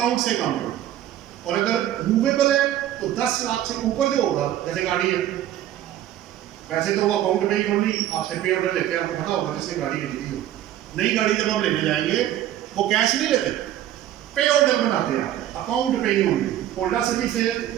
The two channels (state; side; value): quieter; left; 12.3 dB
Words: से काम करो। और अगर मूवेबल है तो 10 लाख से ऊपर जो होगा, जैसे गाड़ी है, वैसे तो वो अकाउंट में ही ओनली आपसे पे ऑर्डर लेते हैं, आपको पता होगा जिससे गाड़ी खरीदी हो। नई गाड़ी जब आप लेने जाएंगे वो कैश नहीं लेते, पे ऑर्डर बनाते हैं, अकाउंट पे ही होंगे। होंडा सिटी से